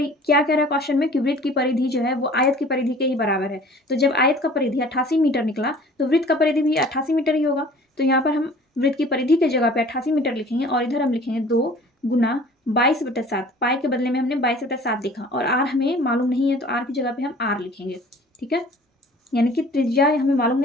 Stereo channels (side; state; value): both; normal; correlation 0.48